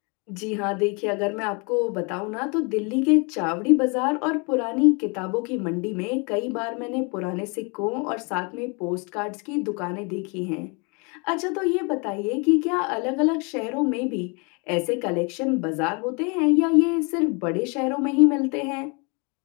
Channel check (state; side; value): quieter; right; 32.3 dB